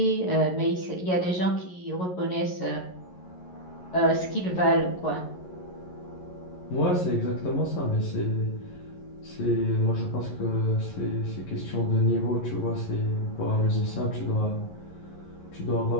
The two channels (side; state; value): right; late; 11 ms